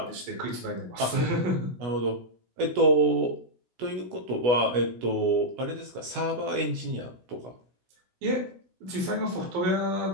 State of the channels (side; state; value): left; late; 16 ms